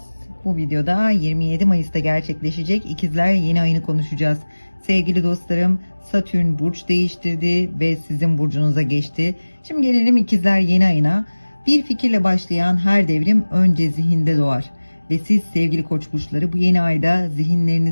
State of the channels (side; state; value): both; inverted; correlation -1.00